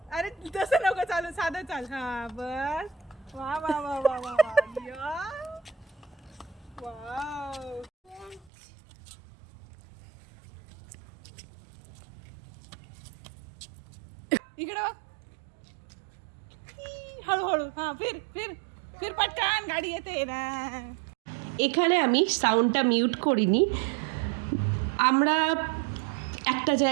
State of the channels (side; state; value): left; drops out; at 8.5 s